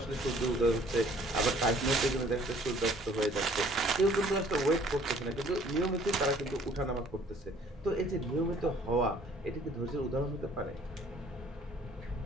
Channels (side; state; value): both; normal; correlation 0.57